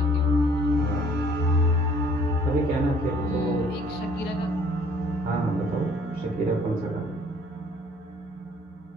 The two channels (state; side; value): normal; both; correlation 0.57